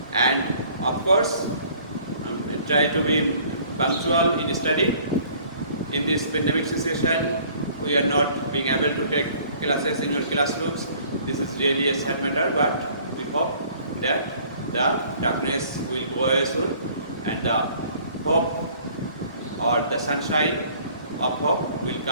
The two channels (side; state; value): both; inverted; correlation -0.55